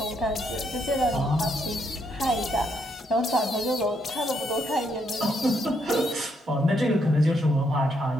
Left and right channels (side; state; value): both; normal; correlation 0.75